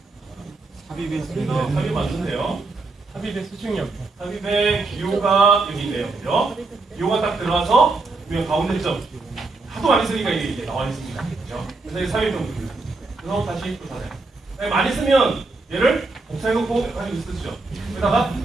삽입의 수준이 삽입 맞는데요. 삽입의 수준이 없죠. 삽입의 기호가 여기 있네요. 그죠? 기호가 딱 들어가서 가운데 점. 하도 많이 쓰니까 이게 나와 있습니다. 그죠? 그래서 이게 삽입 정도입니다. 그래서 다시 또 찾아요. 많이 쓰면 얘를 복사해놓고 가지고 쓰죠. 그러다가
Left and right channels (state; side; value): quieter; left; 3.5 dB